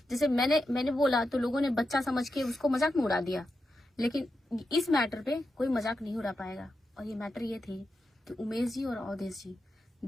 जैसे मैंने बोला तो लोगों ने बच्चा समझ के उसको मजाक में उड़ा दिया, लेकिन इस मैटर पे कोई मजाक नहीं उड़ा पाएगा। और ये मैटर ये थी कि उमेश जी और अवधेश जी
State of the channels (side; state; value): both; normal; correlation 0.88